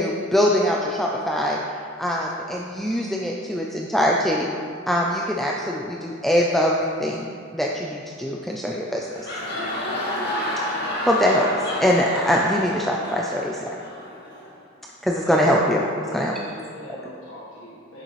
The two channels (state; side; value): normal; both; correlation 0.48